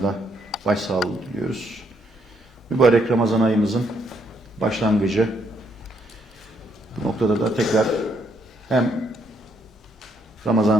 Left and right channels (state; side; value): normal; both; correlation 0.73